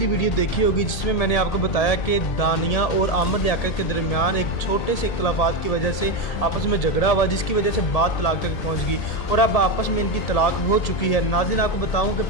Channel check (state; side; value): late; right; 1.8 ms